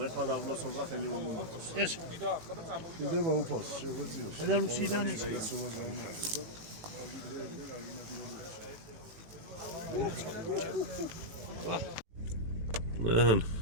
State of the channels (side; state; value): left; late; 18 ms